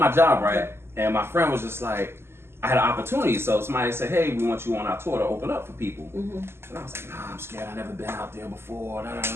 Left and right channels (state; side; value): late; left; 0.12 ms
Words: job, right? And my friend was just like, I had an opportunity. So somebody said, hey, we want you on our tour to open up for people. And I was like, nah, I'm scared. I've never been out there before.